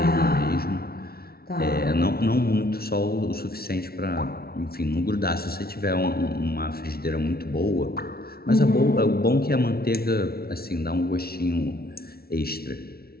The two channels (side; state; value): right; late; 0.44 ms